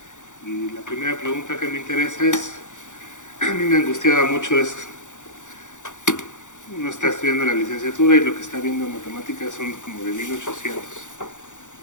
Y la primera pregunta que me interesa es, a mí me angustiaba mucho es, uno está estudiando la licenciatura y lo que está viendo en matemáticas son como de 1800,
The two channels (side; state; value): right; late; 0.86 ms